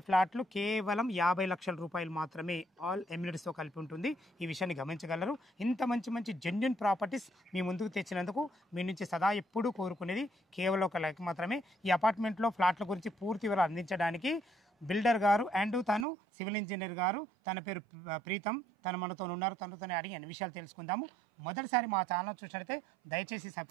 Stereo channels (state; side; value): drops out; left; at 16.1 s